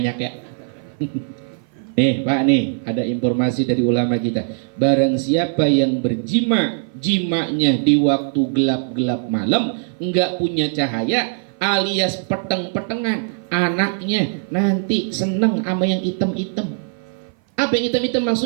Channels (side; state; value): left; silent; 57 dB below the other